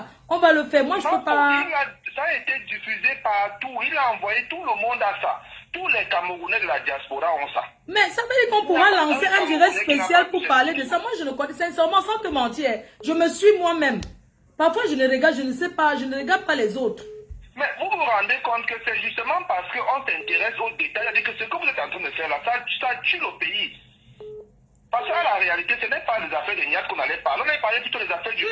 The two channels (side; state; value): both; identical; correlation 1.00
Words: On va le faire. Moi, je ne peux pas... Ça a été diffusé partout. Il a envoyé tout le monde à ça. Tous les Camerounais de la diaspora ont ça. Mais ça veut dire qu'on pourra lancer un direct spécial pour parler de ça. Moi, je ne connais sincèrement, sans te mentir, je me suis moi-même. Parfois, je ne regarde, je ne sais pas, je ne regarde pas les autres. Mais vous vous rendez compte que c'est justement parce qu'on s'intéresse aux détails, c'est-à-dire que ce que vous êtes en train de faire là, ça tue le pays. Parce que la réalité, ce n'est pas les affaires de Niat qu'on allait parler, on allait parler plutôt des affaires du